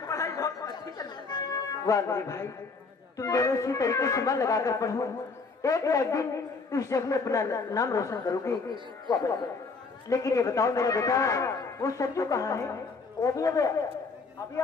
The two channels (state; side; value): quieter; right; 4.3 dB